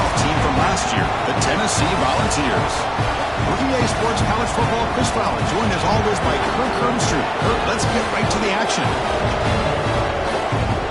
team from last year, the Tennessee Volunteers. EA Sports College Football Chris Fowler, joined as always by Kirk Hermstreet. Kirk, let's get right to the action.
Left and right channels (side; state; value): both; identical; correlation 1.00